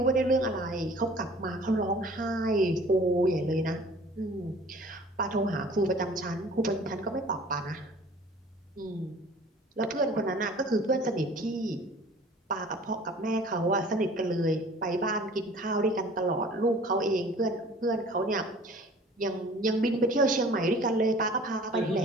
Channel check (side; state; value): both; normal; correlation 0.48